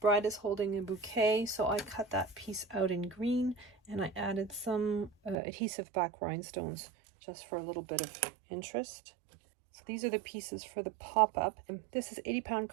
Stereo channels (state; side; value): drops out; left; at 5.4 s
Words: Bride is holding a bouquet, so I cut that piece out in green, and I added some adhesive back rhinestones just for a little bit of interest. So these are the pieces for the pop-up. This is 80-pound